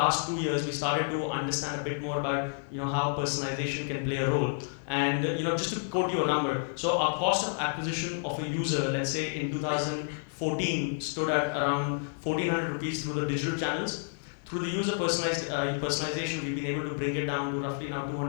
2 years, we started to understand a bit more about how personalization can play a role. And just to quote you a number, so our cost of acquisition of a user, let's say in 2014, stood at around 1,400 rupees through the digital channels. Through the user personalization, we've been able to bring it down to roughly now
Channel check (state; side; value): silent; right; digital silence